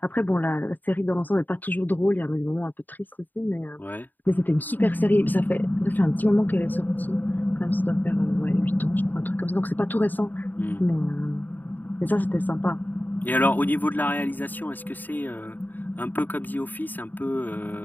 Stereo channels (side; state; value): right; late; 0.088 ms